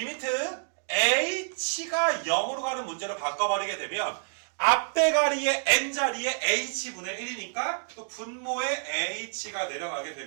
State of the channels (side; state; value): left; silent; digital silence